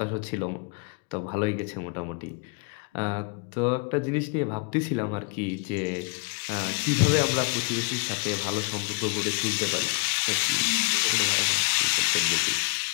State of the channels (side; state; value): right; quieter; 34.9 dB